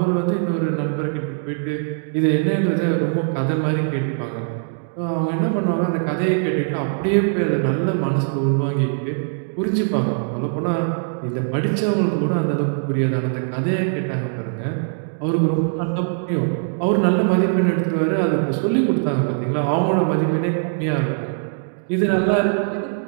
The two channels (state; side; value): silent; left; digital silence